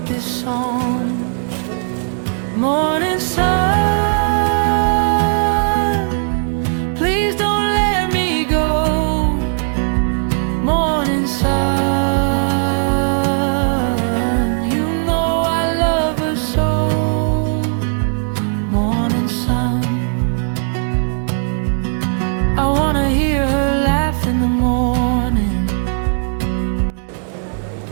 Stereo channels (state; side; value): silent; left; 59 dB below the other